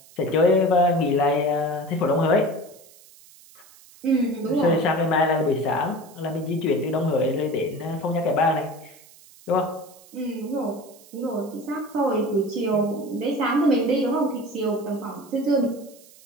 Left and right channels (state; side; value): noise; right; hiss, 24 dB below the sound